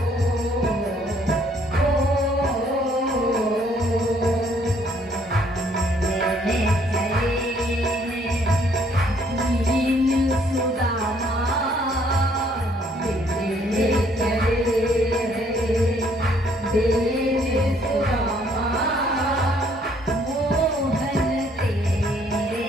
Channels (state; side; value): normal; both; correlation 0.65